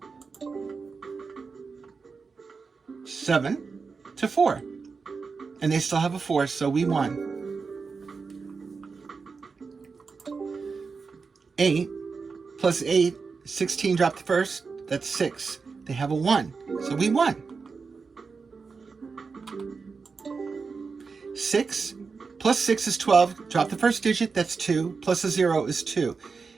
7 to 4. And they still have a 4, so we won. 8 plus 8, 16 dropped the first. That's 6. They have a 1, so we won. 6 plus 6 is 12. Drop the first digit, that's 2. Plus a 0 is 2.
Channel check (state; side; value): quieter; left; 4.9 dB